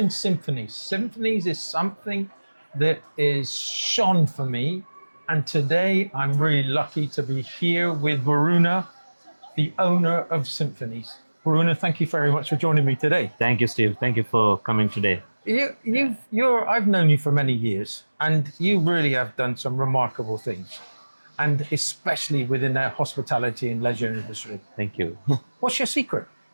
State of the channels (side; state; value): both; inverted; correlation -1.00